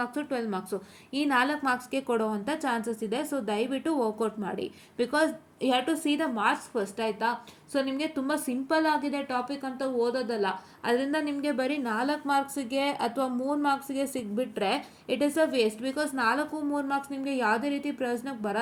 12 marks ಈ 4 ಮಾರ್ಕ್ಸ್ಗೆ ಕೊಡುವಂಥ ಚಾನ್ಸಸ್ ಇದೆ. ಸೊ ದಯವಿಟ್ಟು ವರ್ಕೌಟ್ ಮಾಡಿ, because you have to see the marks first, ಆಯಿತಾ? ಸೊ ನಿಮಗೆ ತುಂಬ ಸಿಂಪಲ್ ಆಗಿದೆ ಟಾಪಿಕ್ ಅಂತ ಓದೋದಲ್ಲ, ಅದರಿಂದ ನಿಮಗೆ ಬರೀ 4 ಮಾರ್ಕ್ಸಿಗೆ ಅಥವಾ 3 ಮಾರ್ಕ್ಸಿಗೆ ಸಿಗ್ಬಿಟ್ರೆ it is a waste. Because 4, 3 marks ನಿಮಗೆ ಯಾವುದೇ ರೀತಿ ಪ್ರಯೋಜನಕ್ಕೆ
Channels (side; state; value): both; identical; correlation 1.00